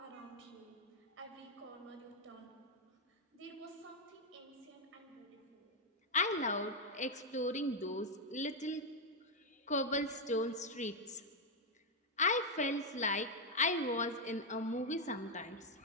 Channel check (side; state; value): both; normal; correlation 0.02